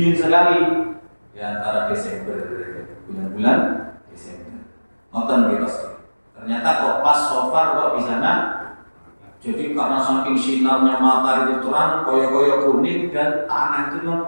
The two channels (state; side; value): inverted; both; correlation -1.00